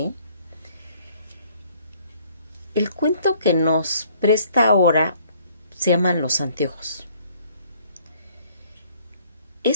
El cuento que nos presta ahora se llaman Los Anteojos.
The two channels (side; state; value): both; inverted; correlation -0.61